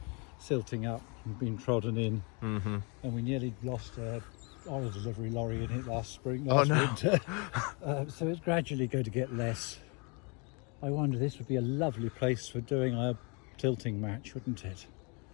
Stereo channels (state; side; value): quieter; right; 32.5 dB